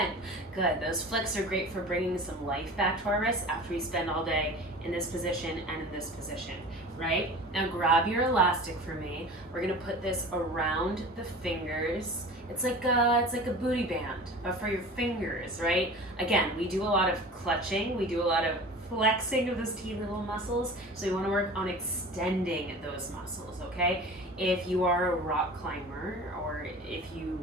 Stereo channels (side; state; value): both; normal; correlation 0.38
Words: Good. Those flicks are great for bringing some life back to our wrists after we spend all day in this position and in this position, right? Now grab your elastic for me. We're going to put this around the fingers. It's like a booty band, but for your fingers, right? Again, we do a lot of clutching. We do a lot of flexing of those teeny little muscles. So we want to work on extending those muscles, okay? If you are a rock climber or if you